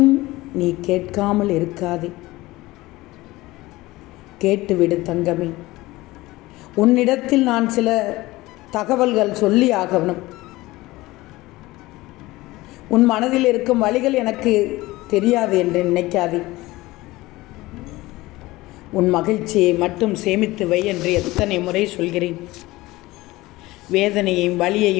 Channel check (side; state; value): right; quieter; 19.3 dB